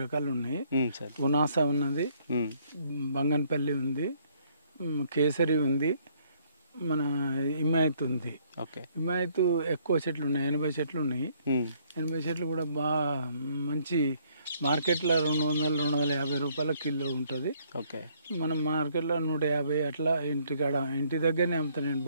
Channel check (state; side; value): inverted; both; correlation -0.65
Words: రకాలు ఉన్నాయి. ఉనాస ఉన్నది, బంగన్పల్లి ఉంది, కేసరి ఉంది, మన హిమాయత్ ఉంది. ఓకే, హిమాయత్ ఎక్కువ చెట్లు ఉన్నాయి, 80 చెట్లు ఉన్నాయి. 80 చెట్లు కూడా బాగా మంచి మార్కెట్లో 200-250 రూపాయల కిలో ఉంటుంది. ఓకే, మనం మార్కెట్లో 150 అట్లా. ఇంటి దగ్గరనే అమ్ముతాను నేను,